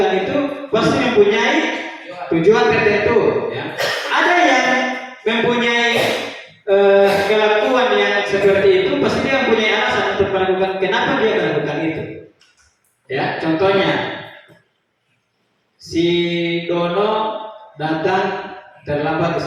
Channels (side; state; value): both; identical; correlation 1.00